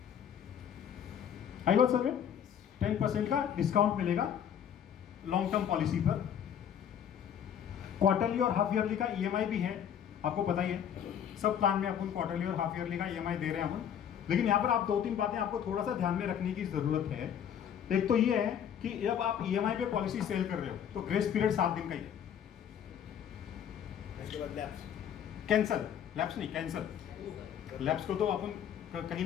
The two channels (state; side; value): quieter; right; 9.0 dB